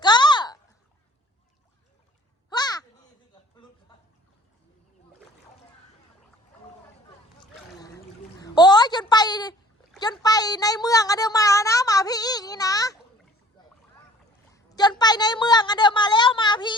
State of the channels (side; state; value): both; normal; correlation 0.53